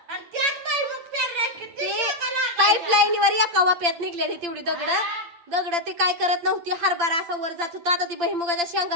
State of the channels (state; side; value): late; left; 8.7 ms